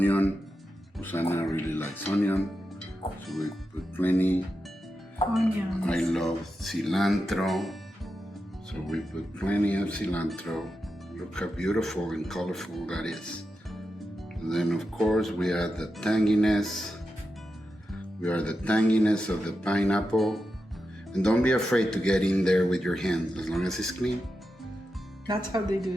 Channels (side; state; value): both; normal; correlation 0.89